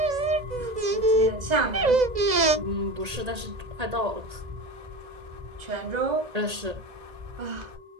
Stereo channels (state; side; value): late; left; 2.0 ms